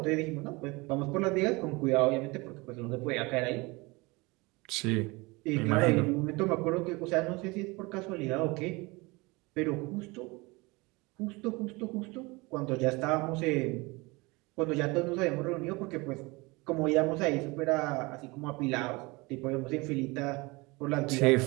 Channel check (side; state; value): left; quieter; 24.8 dB